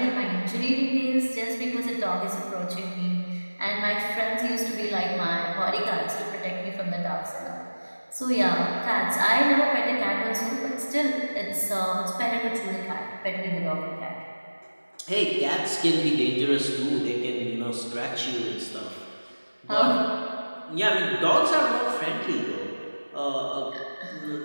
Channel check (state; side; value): inverted; both; correlation -1.00